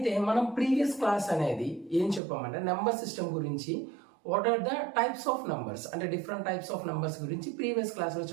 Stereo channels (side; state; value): left; drops out; at 2.2 s